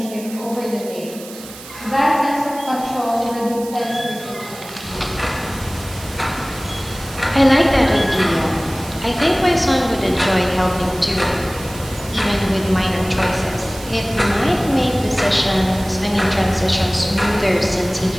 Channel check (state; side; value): noise; right; hiss, 16 dB below the sound